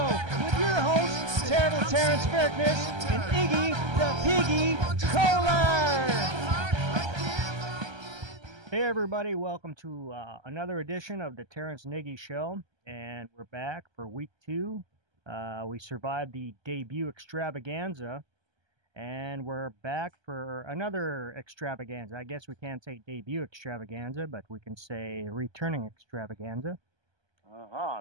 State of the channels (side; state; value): left; late; 1.3 ms